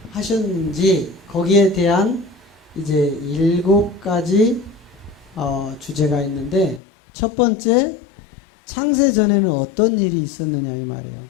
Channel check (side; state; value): right; drops out; at 6.8 s